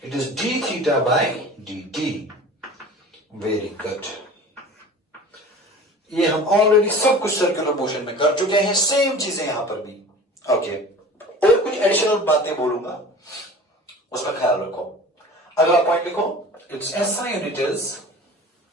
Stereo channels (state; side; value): normal; both; correlation 0.40